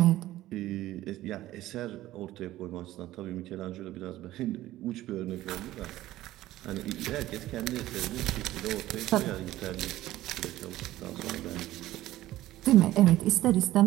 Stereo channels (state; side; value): quieter; left; 15.4 dB